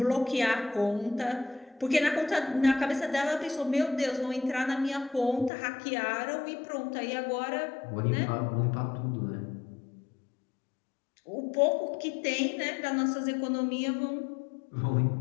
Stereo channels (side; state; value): right; drops out; at 5.5 s